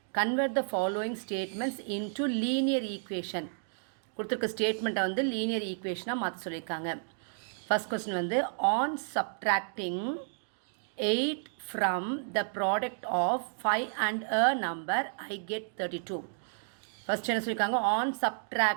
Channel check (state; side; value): silent; left; digital silence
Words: convert the following statements into linear equation. கொடுத்திருக்க ஸ்டேட்மெண்ட்டை வந்து linear equationஆ மாற்ற சொல்லியிருக்காங்க. First question வந்து on subtracting 8 from the product of 5 and a number I get 32. First என்ன சொல்லியிருக்காங்க on